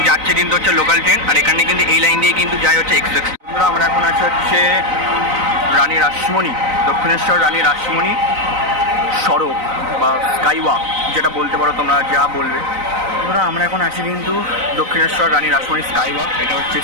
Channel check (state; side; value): late; left; 3.9 ms